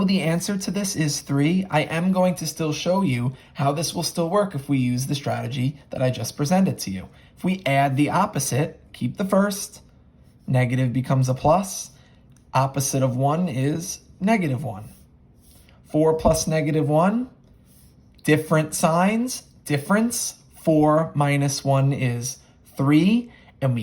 the answer to this is 3, I am going to still show you how this will still work if we use the strategy that I just presented to you. If we add the opposite, keep the first, negative becomes a plus. Opposite of 1 is negative 1. 4 plus negative 1, different signs, difference. 4 minus 1 is 3, and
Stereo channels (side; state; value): both; identical; correlation 1.00